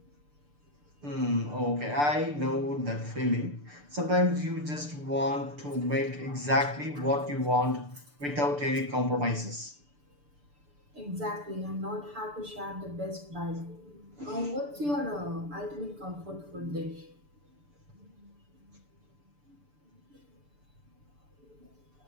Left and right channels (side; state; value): left; late; 6.8 ms